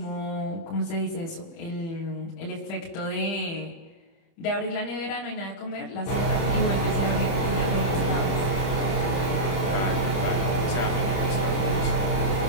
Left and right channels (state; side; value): late; right; 30 ms